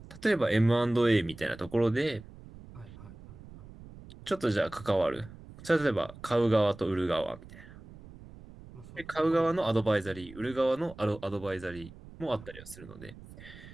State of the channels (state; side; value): noise; right; rumble, 18 dB below the sound